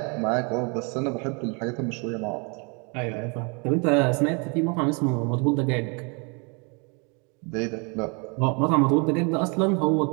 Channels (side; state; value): left; quieter; 33.7 dB